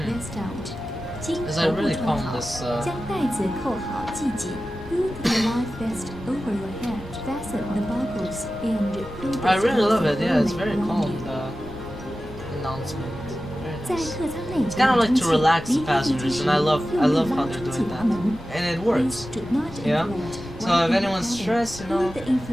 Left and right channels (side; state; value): both; normal; correlation 0.94